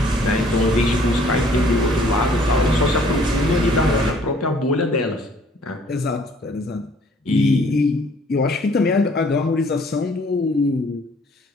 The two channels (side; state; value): both; normal; correlation 0.59